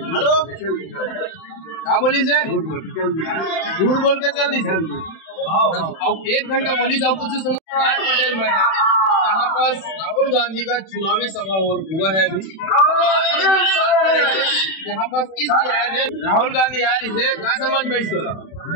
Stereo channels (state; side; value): late; right; 31 ms